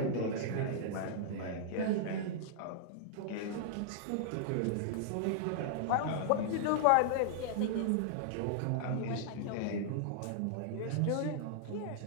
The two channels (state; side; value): different; both; correlation -0.01